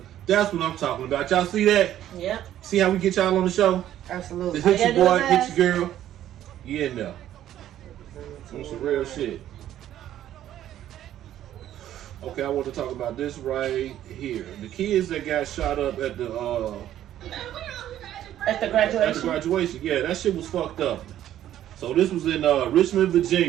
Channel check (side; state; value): left; quieter; 12.0 dB